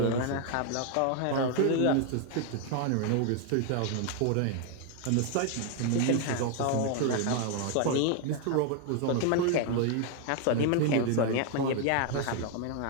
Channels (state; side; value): different; both; correlation 0.00